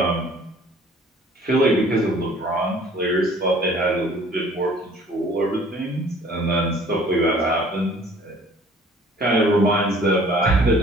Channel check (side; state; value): both; normal; correlation 0.53